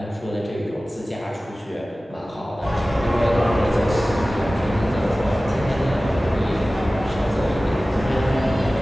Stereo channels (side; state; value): both; normal; correlation 0.97